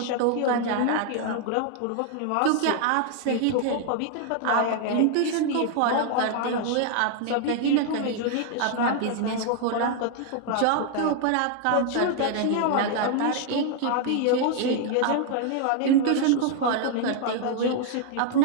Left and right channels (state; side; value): different; both; correlation 0.00